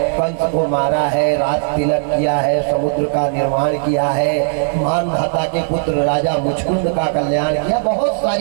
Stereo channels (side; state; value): left; silent; digital silence